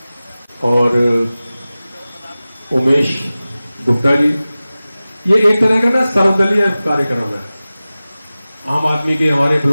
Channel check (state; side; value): inverted; both; correlation -0.97